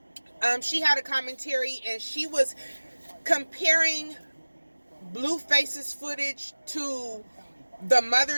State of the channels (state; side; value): inverted; both; correlation -1.00